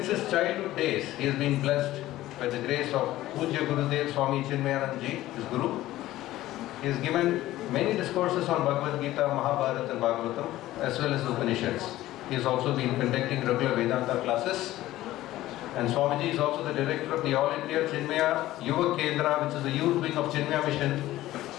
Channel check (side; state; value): right; quieter; 15.5 dB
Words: his childhood days, he has been blessed by the grace of Pujya Gurudev Swami Chinmayanand Ji, his Guru. He has given many discourses on Bhagavad Gita, Mahabharata and Bhagavatam, as well as Upanishads. He has also been conducting regular Vedanta classes. And Swamiji is also the director of the All India Chinmaya Yuva Kendra, which is the youth wing of Chinmaya Mission,